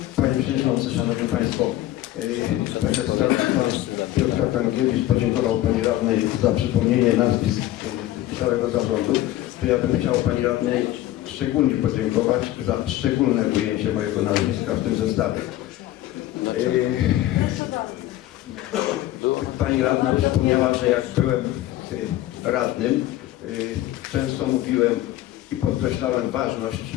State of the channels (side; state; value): right; quieter; 14.6 dB